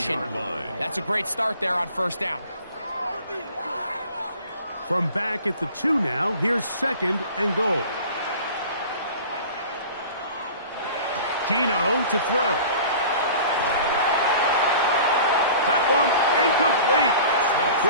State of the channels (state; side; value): inverted; both; correlation -0.42